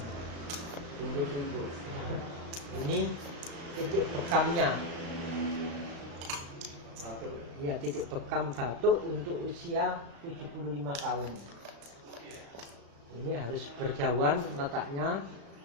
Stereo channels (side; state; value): left; late; 35 ms